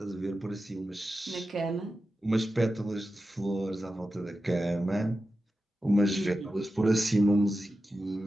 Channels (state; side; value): normal; both; correlation 0.92